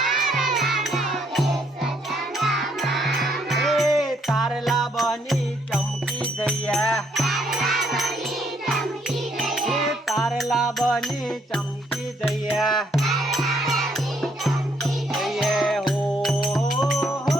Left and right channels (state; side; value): normal; both; correlation 0.71